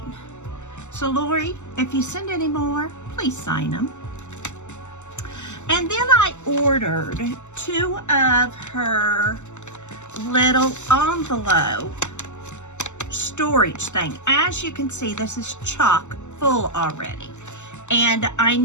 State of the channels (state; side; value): late; right; 0.83 ms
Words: So Lori, if you send any more, please sign them. And then I ordered 2 of her little envelope storage thing. As you can see, this is chock full already, and I